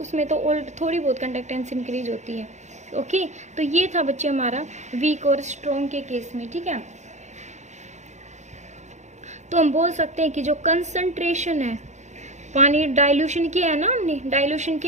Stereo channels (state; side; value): late; left; 0.34 ms